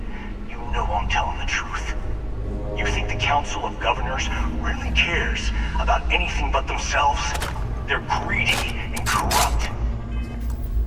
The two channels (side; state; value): both; identical; correlation 1.00